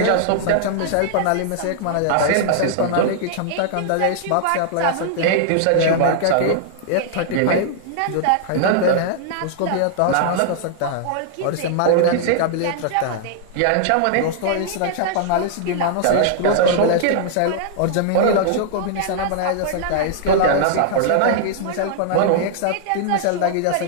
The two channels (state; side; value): different; both; correlation -0.01